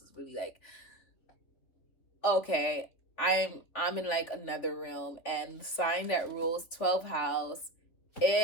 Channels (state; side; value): late; right; 3.7 ms